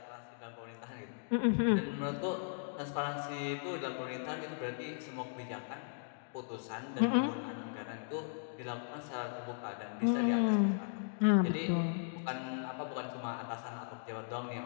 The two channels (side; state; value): right; silent; digital silence